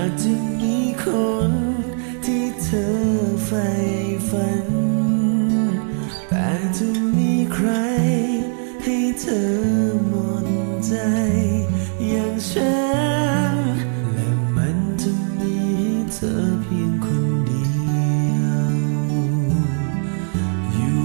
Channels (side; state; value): left; silent; 55 dB below the other